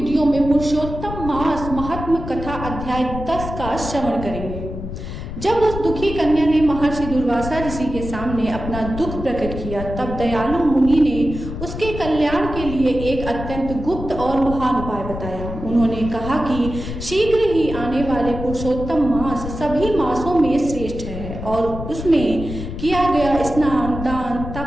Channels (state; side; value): noise; left; rumble, 8 dB below the sound